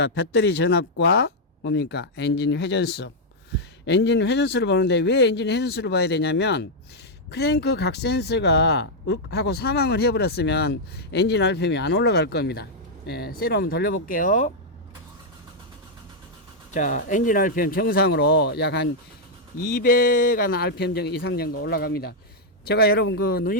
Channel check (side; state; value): both; normal; correlation -0.03